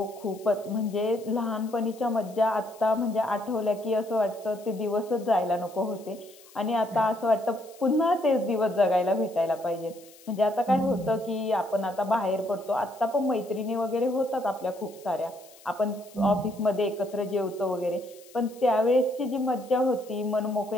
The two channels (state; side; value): noise; left; hiss, 24 dB below the sound